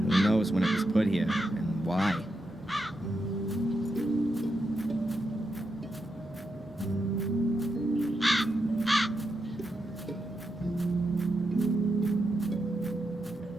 knows when it was put here and why?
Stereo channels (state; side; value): normal; both; correlation 0.85